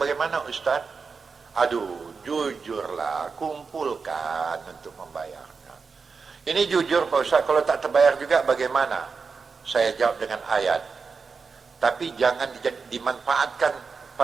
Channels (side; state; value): left; quieter; 5.0 dB